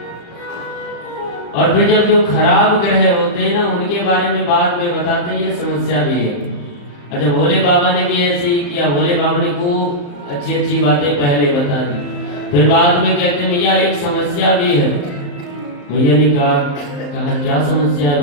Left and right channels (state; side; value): late; right; 35 ms